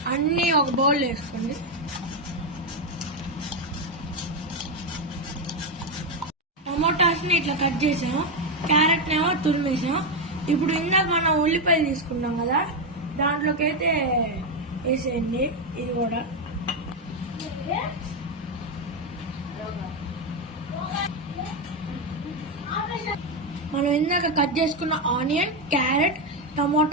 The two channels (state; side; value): normal; both; correlation 0.06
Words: అన్నీ ఒక బౌల్ వేసుకోండి. టమోటాస్ని ఇట్లా కట్ చేసాం, క్యారెట్ ఏమో తురిమేసాం. ఇప్పుడు ఇందాక మనం ఉల్లిపాయలు తీసుకున్నాం కదా, దాంట్లోకి అయితే వేసేయండి. ఇది కూడా మనం ఇందాక కట్ చేసుకున్న ఆనియన్, క్యారెట్,